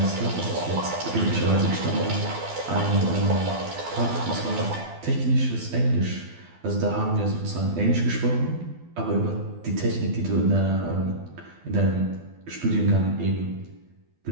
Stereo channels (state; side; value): late; left; 12 ms